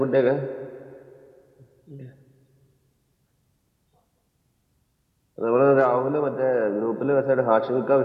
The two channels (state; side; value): identical; both; correlation 1.00